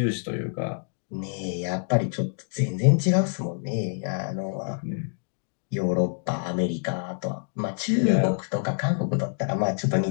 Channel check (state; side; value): silent; right; digital silence